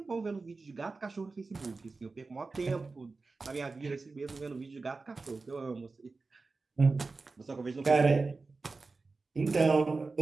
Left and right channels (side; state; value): left; quieter; 3.9 dB